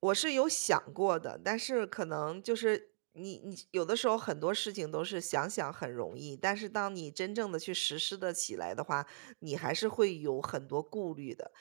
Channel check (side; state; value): left; silent; digital silence